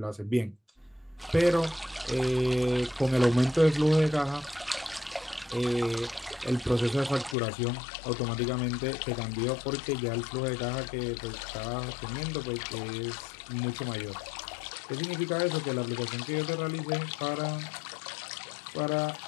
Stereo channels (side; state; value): right; drops out; at 7.4 s